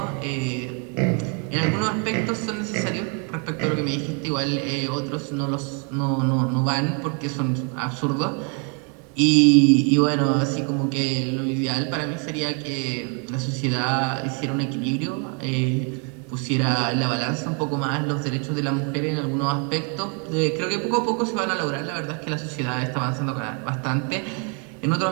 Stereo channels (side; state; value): left; quieter; 38.0 dB